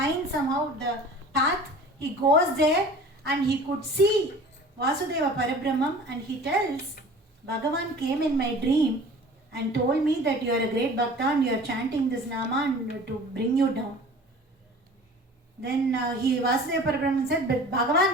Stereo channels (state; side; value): normal; both; correlation 0.43